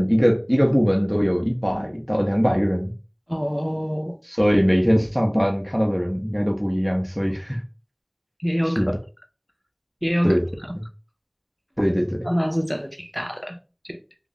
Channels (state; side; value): identical; both; correlation 1.00